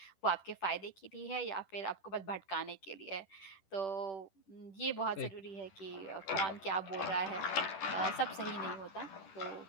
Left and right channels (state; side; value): late; right; 10 ms